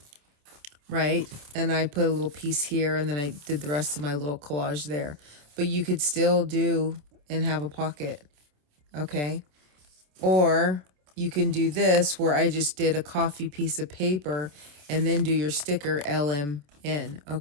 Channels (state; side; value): late; left; 27 ms